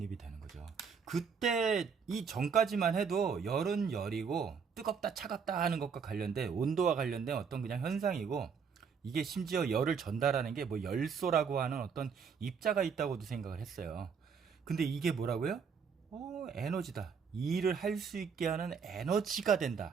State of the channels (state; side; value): quieter; left; 6.2 dB